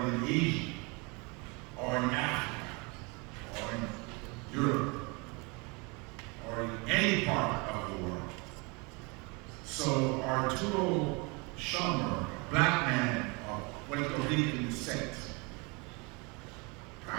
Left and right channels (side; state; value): left; quieter; 29.3 dB